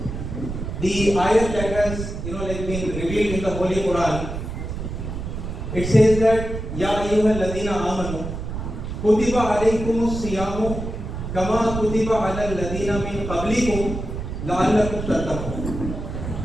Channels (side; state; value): right; noise; rumble, 6 dB below the sound